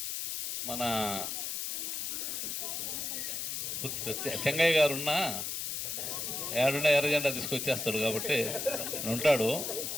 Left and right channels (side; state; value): left; noise; hiss, 3 dB below the sound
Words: మన చెంగయ్య గారు ఉన్నా ఏడున్నా ఎర్రజెండా తీసుకొచ్చేస్తాడు కాబట్టి ఉంటాడు.